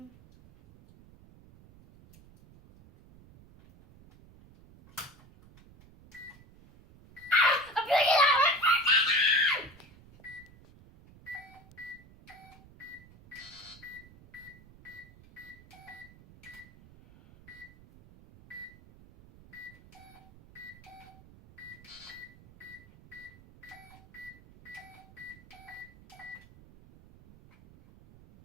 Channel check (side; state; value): right; noise; rumble, 22 dB below the sound